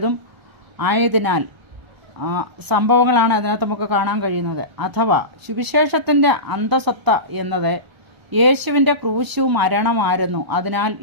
ആയതിനാൽ സംഭവങ്ങളാണ് അതിനകത്ത് നമുക്ക് കാണാൻ കഴിയുന്നത്. അഥവാ സുവിശേഷത്തിൻ്റെ അന്തസത്ത എന്നത് യേശുവിൻ്റെ ക്രൂശു മരണമായിരുന്നു. അതിനാൽ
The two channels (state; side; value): late; left; 1.0 ms